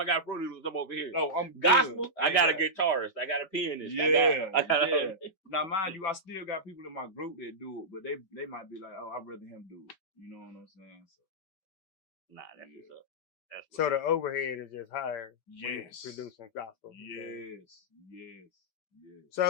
got produce some over here. Oh, I'm Gospel, good. I got a guitarist, I got a pianist. Yeah, I got yeah. Now, mind you, I still got people in my group that do it, but they might be like, oh, I'd rather him do it. You know what I'm saying? So, Nah, that's what's up. So the overhead is just higher when yes. you're producing gospel. Yes.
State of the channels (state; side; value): late; right; 5.1 ms